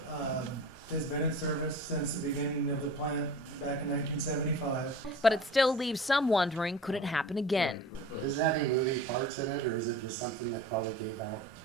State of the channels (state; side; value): normal; both; correlation 0.39